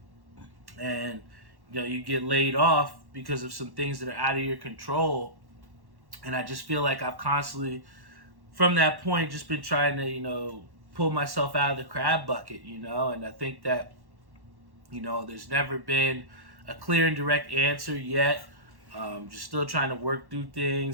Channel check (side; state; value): left; late; 1.1 ms